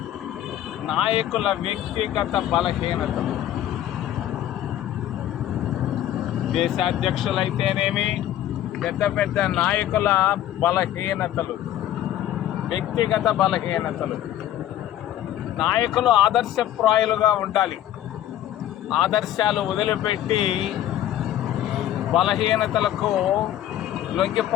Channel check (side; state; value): right; quieter; 12.2 dB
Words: నాయకుల వ్యక్తిగత బలహీనతలు. దేశాధ్యక్షులైతేనేమి, పెద్ద పెద్ద నాయకుల బలహీనతలు, వ్యక్తిగత బలహీనతలు. నాయకులు ఆదర్శప్రాయులుగా ఉండాలి. ఆదర్శాలు వదిలిపెట్టి బలహీనతలకు